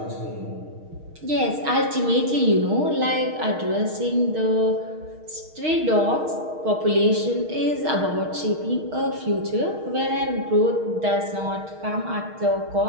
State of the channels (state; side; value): late; left; 6.4 ms